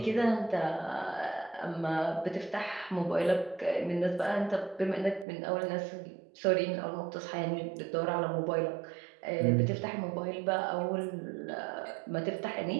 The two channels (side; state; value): left; drops out; at 5.2 s